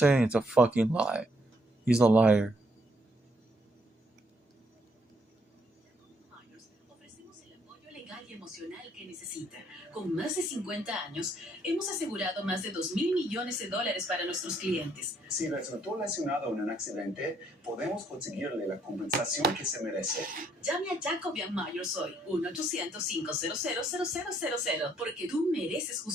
it's a fucking lie. He's a liar. Ofrecemos el apoyo legal y emocional que necesita. Con más de 50 años, hemos asegurado más de $2,000 millones para nuestros clientes. Si resultó lesionado en un accidente, podemos conseguirle la compensación que se merece. Llame a Jacobian Myers hoy, 1-800-500-0000, porque tú mereces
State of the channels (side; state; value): both; normal; correlation 0.69